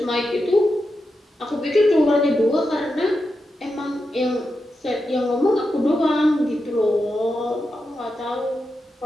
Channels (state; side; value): normal; both; correlation 0.88